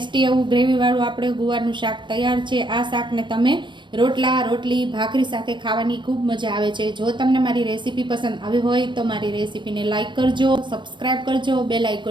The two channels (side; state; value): left; late; 0.22 ms